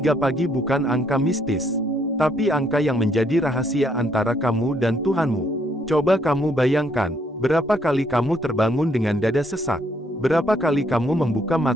pagi bukan angka mistis, tapi angka yang menjadi rahasia antara kamu dan Tuhanmu. Coba kamu bayangkan, berapa kali kamu terbangun dengan dada sesak? Berapa kali kamu membuka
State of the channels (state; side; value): normal; both; correlation 0.70